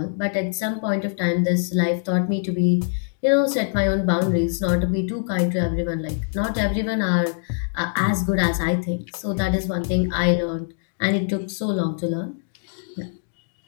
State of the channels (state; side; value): silent; right; digital silence